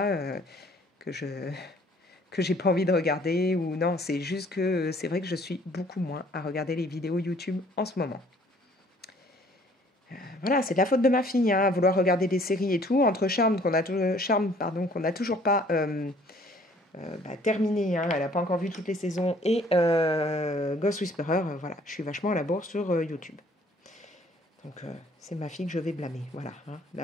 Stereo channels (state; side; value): normal; both; correlation 0.58